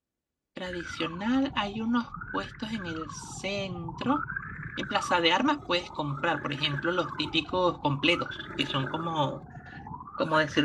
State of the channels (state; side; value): identical; both; correlation 1.00